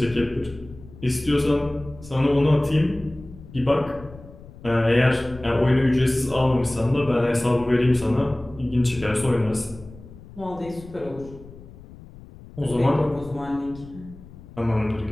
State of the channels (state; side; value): noise; left; rumble, 19 dB below the sound